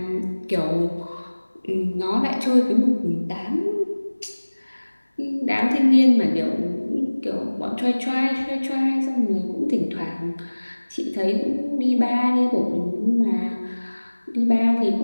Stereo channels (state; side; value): inverted; both; correlation -1.00